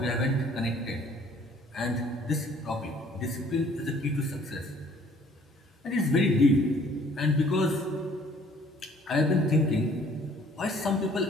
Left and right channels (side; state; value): both; normal; correlation 0.57